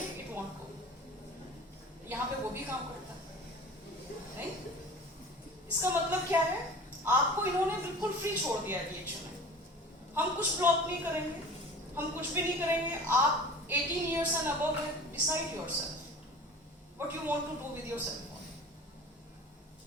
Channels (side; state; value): both; normal; correlation 0.39